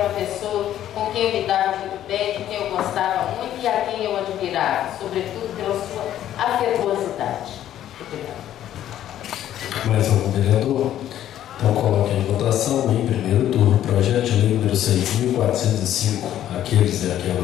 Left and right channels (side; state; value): right; quieter; 11.7 dB